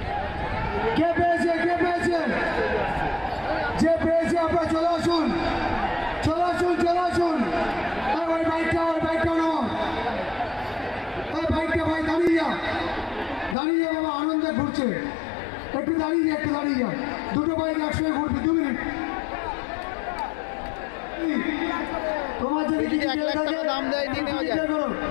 কে পেয়েছে, কে পেয়েছে? যে পেয়েছে আপনারা চলে আসুন, চলে আসুন, চলে আসুন। ওই বাইকটা নাও, ওই বাইকটা ভাই দাঁড়িয়ে যা, দাঁড়িয়ে যা বাবা, আনন্দে ঘুরছে। একটু দাঁড়িয়ে যা, একটু দাঁড়িয়ে যা। দুটো বাইক একসঙ্গে ঘুরবি, 2 মিনিট। তোমার যদি যদি 1 লাখ টাকা দাম দেয় নিয়ে নেওয়া যায়।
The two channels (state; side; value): drops out; right; at 13.6 s